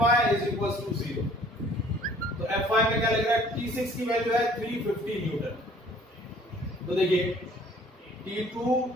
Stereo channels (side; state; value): both; normal; correlation 0.55